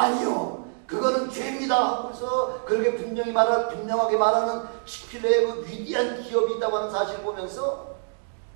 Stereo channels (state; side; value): silent; left; 61 dB below the other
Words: 그거는 죄입니다 하면서 그렇게 분명하게 말하는 치필레의 그 위대한 기업이 있다고 하는 사실을 보면서,